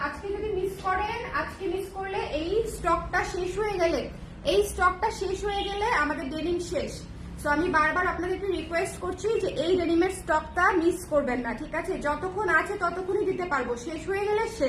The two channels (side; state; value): both; identical; correlation 1.00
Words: আজকে যদি মিস করেন, আজকে মিস করলে এই স্টকটা শেষ হয়ে গেলে আমাদের ডেনিম শেষ। সো আমি বারবার আপনাদেরকে রিকোয়েস্ট করছি যে এই ডেনিমের স্টকটা মিস করবেন না, ঠিক আছে? যতক্ষণ আছে ততক্ষণই দিতে পারবো, শেষ হয়ে গেলে